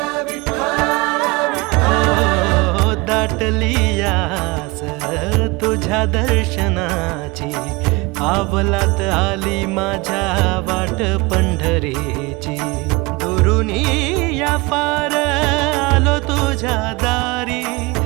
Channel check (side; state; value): left; quieter; 24.7 dB